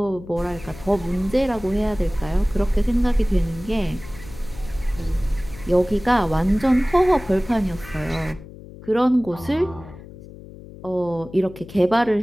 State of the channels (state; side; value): noise; left; hum, 17 dB below the sound